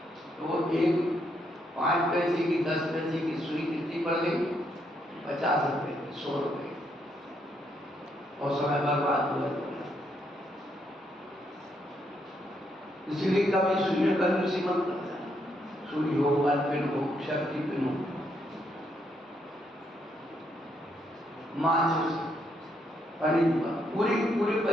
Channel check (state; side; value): normal; both; correlation 0.76